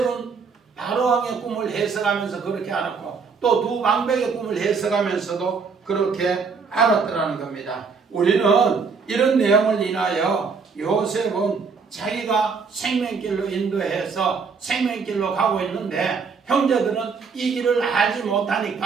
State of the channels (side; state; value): left; quieter; 5.2 dB